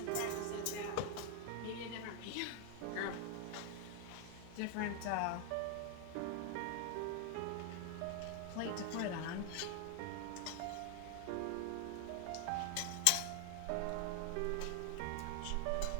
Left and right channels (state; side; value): different; both; correlation 0.00